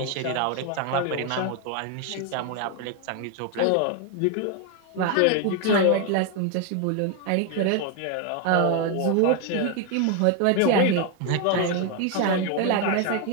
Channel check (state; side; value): different; both; correlation 0.01